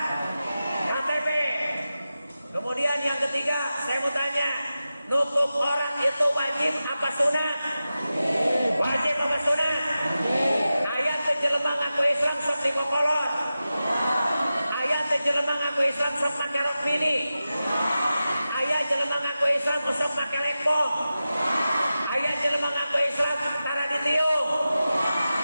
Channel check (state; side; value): inverted; both; correlation -0.93